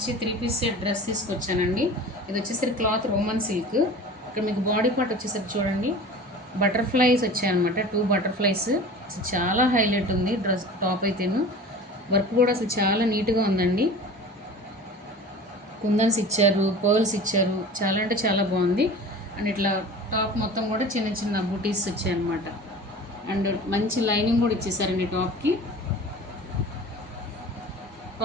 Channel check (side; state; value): both; normal; correlation 0.39